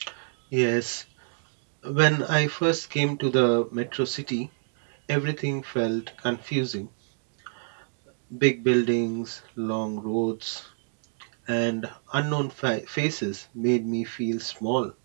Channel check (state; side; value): silent; left; digital silence